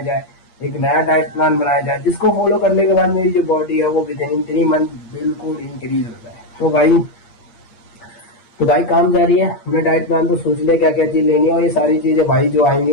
एक नया डाइट प्लान बनाया जाए जिसको फॉलो करने के बाद मेरी जो बॉडी है वो विद इन 3 मंथ बिल्कुल इंक्रीज हो जाए। तो भाई काम जारी है। हमने डाइट प्लान तो सोच लिया क्या क्या चीज लेनी है, और ये सारी चीजें भाई जो आएंगी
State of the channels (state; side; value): late; right; 8.5 ms